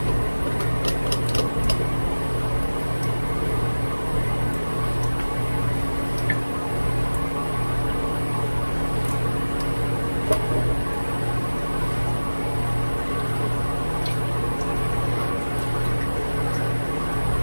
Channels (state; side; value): inverted; both; correlation -1.00